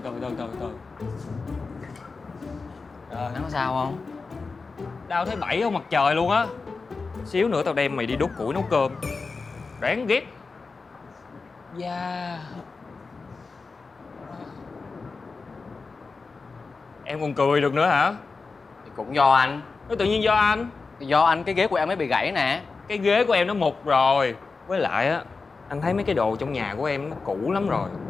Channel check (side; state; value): right; quieter; 4.3 dB